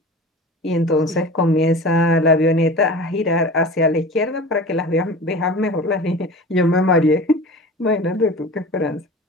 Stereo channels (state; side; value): normal; both; correlation 0.36